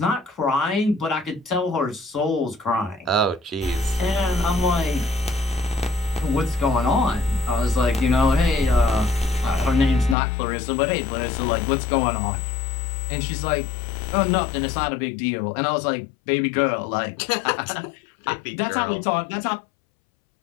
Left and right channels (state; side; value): drops out; right; at 10.2 s